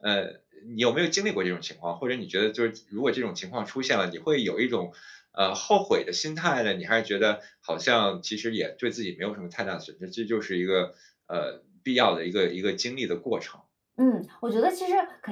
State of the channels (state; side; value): identical; both; correlation 1.00